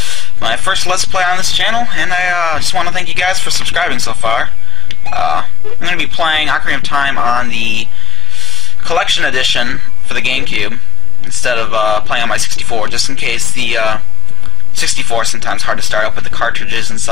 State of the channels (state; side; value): quieter; right; 5.1 dB